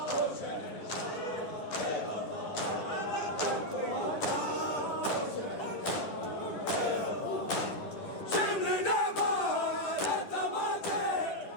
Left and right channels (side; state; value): right; late; 10 ms